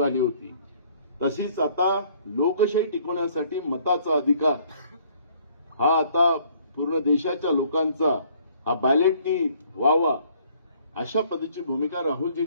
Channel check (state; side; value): inverted; both; correlation -0.61